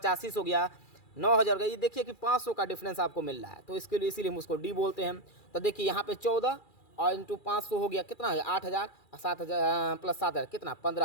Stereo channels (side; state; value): right; late; 2.3 ms